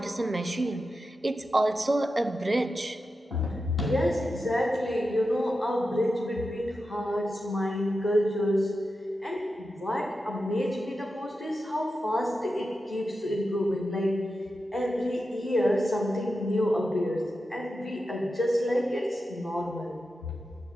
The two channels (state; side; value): normal; both; correlation 0.90